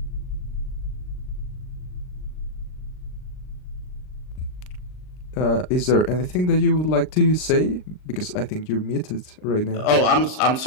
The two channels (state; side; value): late; right; 39 ms